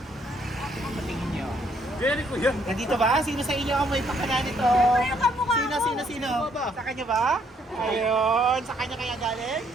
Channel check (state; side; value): normal; both; correlation 0.69